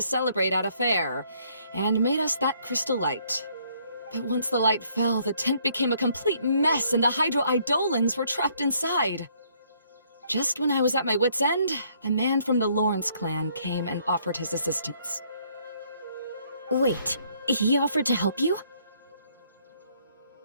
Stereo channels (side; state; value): both; inverted; correlation -0.66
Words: celebrate at a fair, and made us that crystal light. But once the light fell, the tent became a complete mess and the Hydro-Eidolons were trapped inside. Just when I was at my wit's end, a man from the Lawrence clan came and offered his assistance. Wait, he offered to help you?